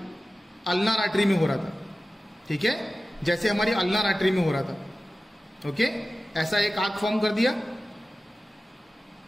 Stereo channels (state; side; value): normal; both; correlation 0.95